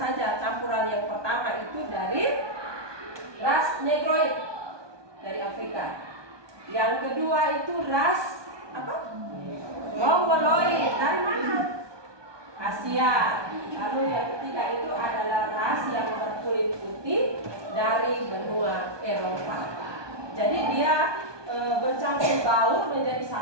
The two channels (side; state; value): left; late; 1.2 ms